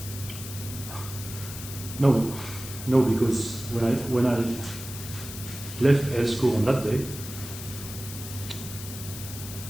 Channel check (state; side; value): noise; left; hiss, 10 dB below the sound